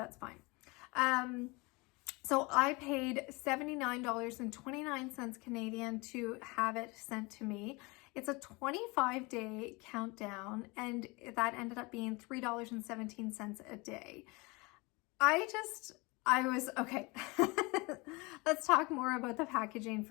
fine. So I paid $79.29 Canadian to have it sent to me. It's a 25-day countdown, and that ended up being $3.17 a day. I was, okay, let's talk more about the packaging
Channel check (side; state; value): right; quieter; 26.0 dB